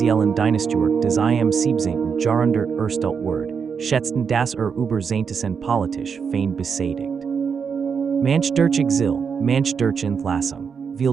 Dynastiewerk des im Siebzigtausend Jahrhundert erstellt Word, schätzten das über Zehntausend politisch fein besädigt. Manch durch Exil, manch durch Entlassung, viel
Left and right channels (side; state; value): left; quieter; 6.3 dB